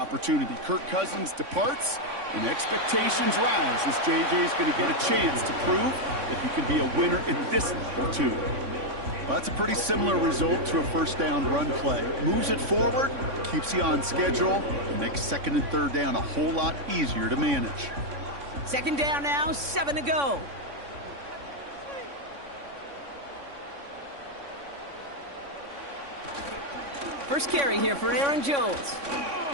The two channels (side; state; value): left; late; 3.6 ms